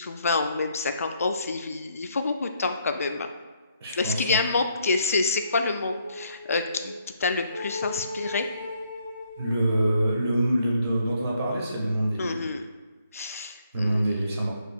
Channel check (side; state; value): both; inverted; correlation -0.71